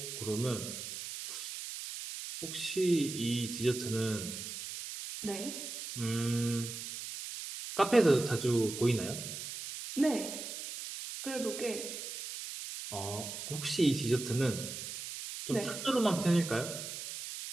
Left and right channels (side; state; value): right; noise; hiss, 8 dB below the sound